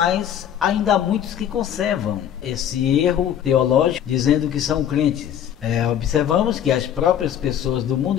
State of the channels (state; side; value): quieter; right; 9.8 dB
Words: ainda há muitos que conservam esse erro teológico, dizendo que são crentes. Observamos que as próprias pessoas do